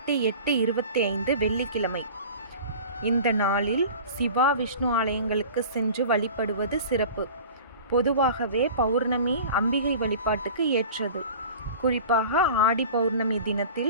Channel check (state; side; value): inverted; both; correlation -0.39